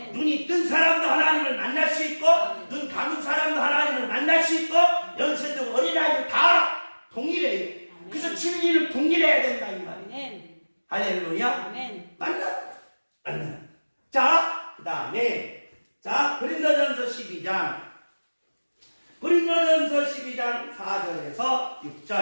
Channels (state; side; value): inverted; both; correlation -1.00